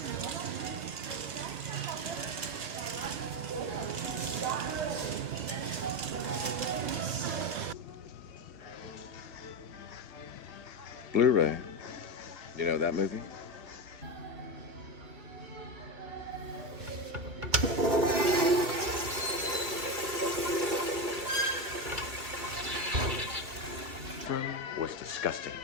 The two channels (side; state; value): left; late; 2.5 ms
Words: Blu-ray. You know that movie? Was disgusting.